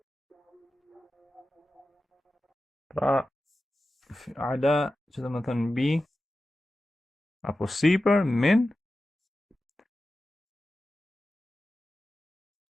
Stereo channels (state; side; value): normal; both; correlation 0.93